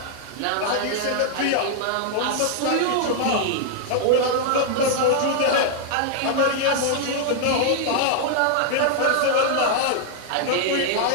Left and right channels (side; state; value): both; different; correlation -0.01